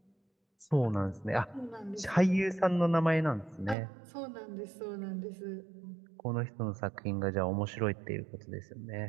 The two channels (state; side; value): drops out; left; at 3.8 s